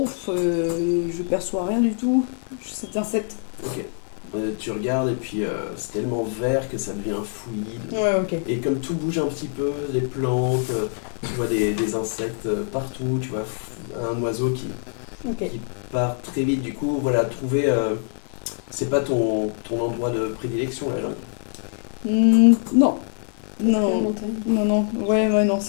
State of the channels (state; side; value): silent; right; digital silence